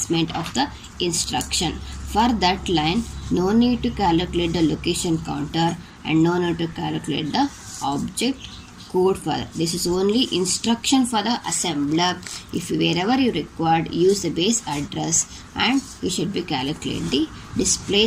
of the instruction. For that line, no need to calculate the location counter and no need to calculate the object code for that. This is only instruction for the assembler. If wherever you required, use the base address and you should be calculate the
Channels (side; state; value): both; identical; correlation 1.00